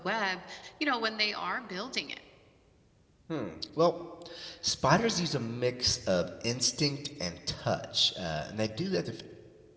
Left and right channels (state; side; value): identical; both; correlation 1.00